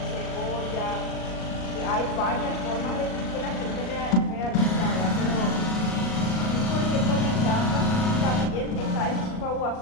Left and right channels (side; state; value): right; late; 38 ms